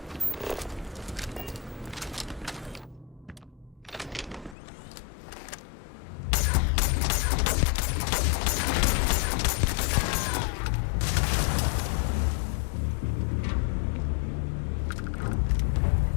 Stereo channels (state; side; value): drops out; right; at 4.5 s